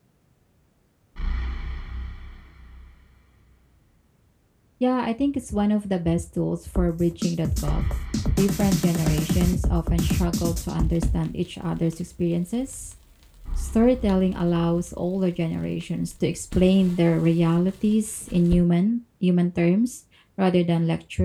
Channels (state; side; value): identical; both; correlation 1.00